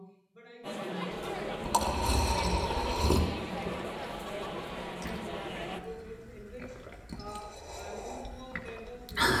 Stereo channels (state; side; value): identical; both; correlation 1.00